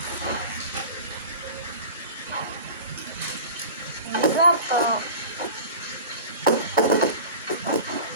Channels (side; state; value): both; inverted; correlation -0.36